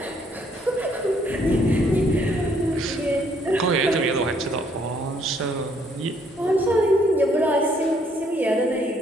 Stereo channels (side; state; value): both; normal; correlation 0.67